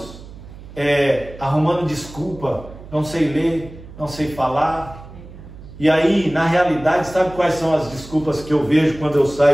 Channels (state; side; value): noise; right; hum, 17 dB below the sound